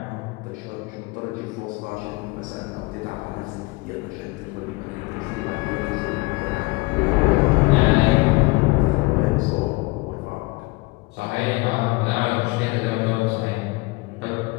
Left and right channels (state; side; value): quieter; right; 24.2 dB